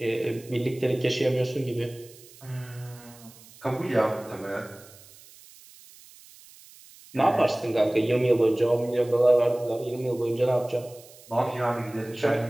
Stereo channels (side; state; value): right; noise; hiss, 22 dB below the sound